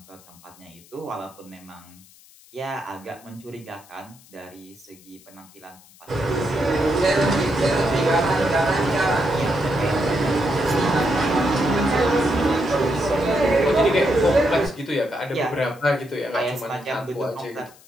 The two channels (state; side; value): noise; left; hiss, 25 dB below the sound